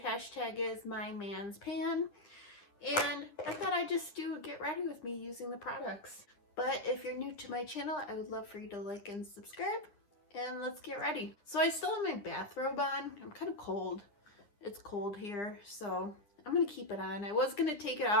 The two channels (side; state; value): right; late; 10 ms